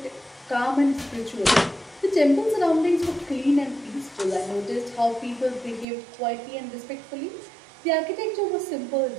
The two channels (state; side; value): drops out; left; at 5.9 s